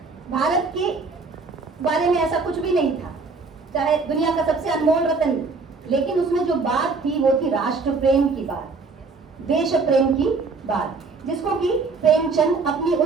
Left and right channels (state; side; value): quieter; left; 4.2 dB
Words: भारत के बारे में ऐसा कुछ भी नहीं था, चाहे दुनिया का सबसे अनमोल रत्न, लेकिन उसमें जो बात थी वो थी राष्ट्र प्रेम की बात, देश प्रेम की बात, जिसको कि प्रेमचंद अपनी